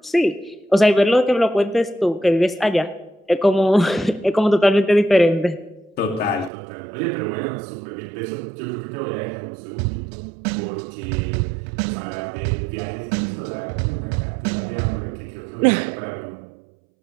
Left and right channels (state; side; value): drops out; left; at 6.5 s